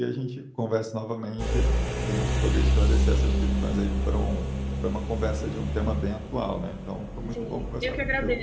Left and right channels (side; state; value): both; identical; correlation 1.00